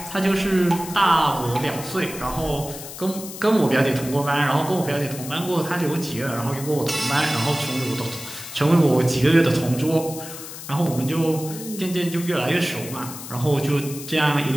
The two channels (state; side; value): noise; left; hiss, 12 dB below the sound